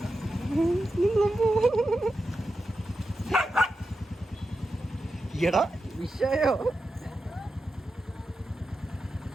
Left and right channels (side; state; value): both; normal; correlation 0.90